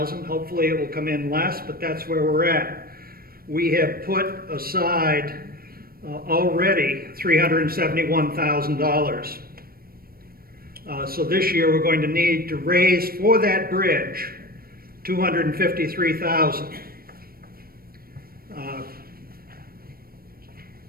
Hopefully it will come in less, but that's where we're at. We have put aside already $371,000. So this year we're going to need to raise for that bridge $253,000.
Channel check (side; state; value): left; late; 0.44 ms